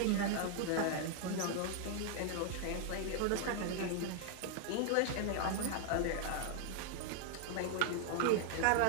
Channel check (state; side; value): different; both; correlation 0.00